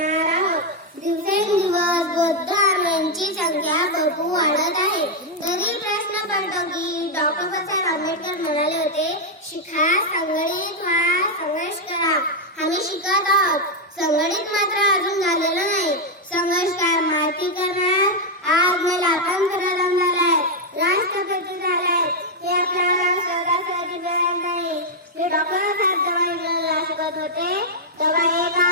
आहोत. दिवसेंदिवस बौद्ध धर्मांची संख्या भरपूर वाढत आहे. तरी प्रश्न पडतो की डॉक्टर बाबासाहेब आंबेडकर म्हणाले होते, शिका, संघटित व्हा, संघर्ष करा. आम्ही शिकत आहोत, संघटित मात्र अजून झालेलं नाही. संघर्ष काय माहिती करणार, आज मला स्वातंत्र्य झालाय, राष्ट्रपती झालाय, हे आपल्याला सहजासहजी मिळणार नाही. मी डॉक्टर साहेब जेव्हा इंग्रजीला शिकत होते तेव्हा एका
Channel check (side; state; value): both; normal; correlation -0.01